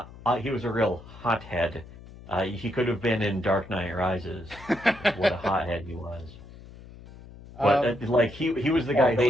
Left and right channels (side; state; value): left; noise; hum, 18 dB below the sound